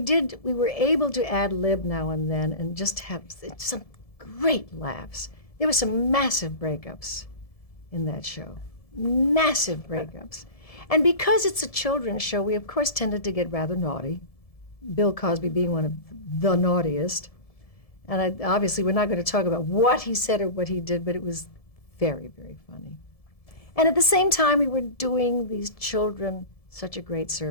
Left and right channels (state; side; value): late; right; 1.7 ms